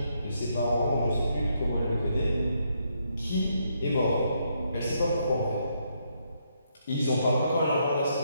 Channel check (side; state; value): both; inverted; correlation -0.76